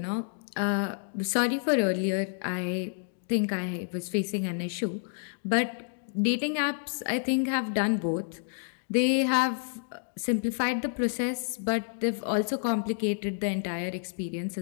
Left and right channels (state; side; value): silent; right; digital silence